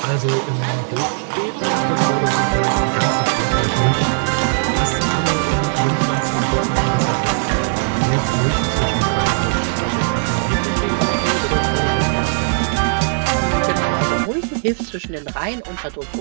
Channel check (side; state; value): left; silent; 67 dB below the other